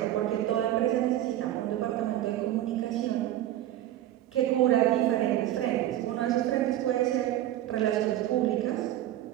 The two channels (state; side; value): quieter; left; 13.3 dB